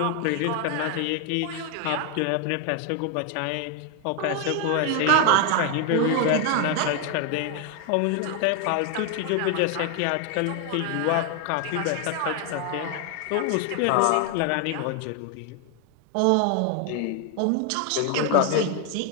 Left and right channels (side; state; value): both; different; correlation 0.01